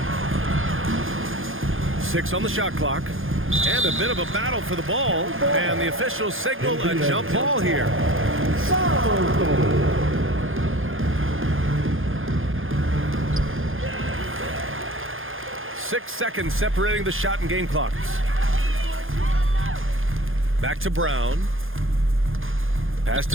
Six on the shot clock. And a bit of a battle for the ball. And the officials signal a jump ball here. 6 seconds separating the shot and game clocks. Back to Brown. Pass to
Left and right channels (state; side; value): late; left; 0.59 ms